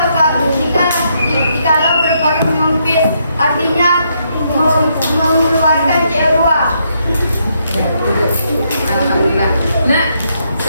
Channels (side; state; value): both; inverted; correlation -0.76